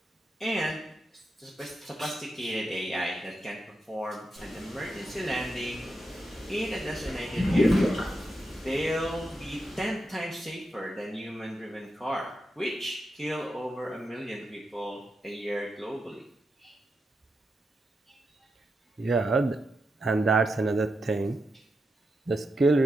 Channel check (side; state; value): both; normal; correlation 0.86